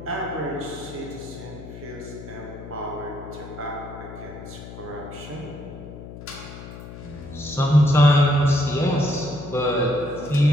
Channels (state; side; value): noise; left; hum, 13 dB below the sound